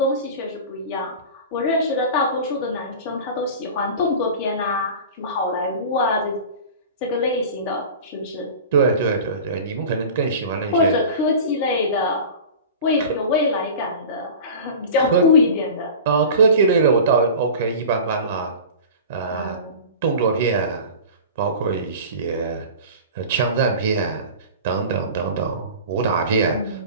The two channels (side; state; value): both; inverted; correlation -0.35